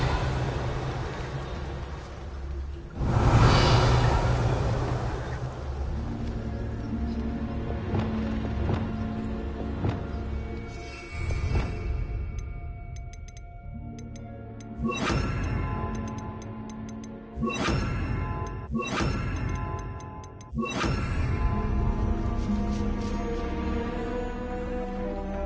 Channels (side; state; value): both; identical; correlation 1.00